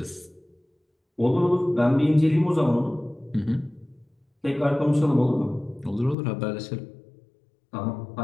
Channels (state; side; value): drops out; right; at 6.2 s